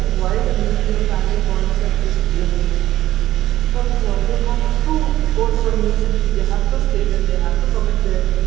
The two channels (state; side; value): quieter; left; 14.2 dB